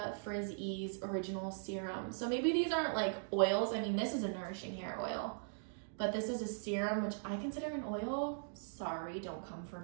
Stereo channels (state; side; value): silent; left; digital silence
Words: Frizz Ease Original Serum. So maybe these aren't like oils. I mean, this is a nourishing hair oil, but this is a serum, which I consider an oil. Sorry, don't come for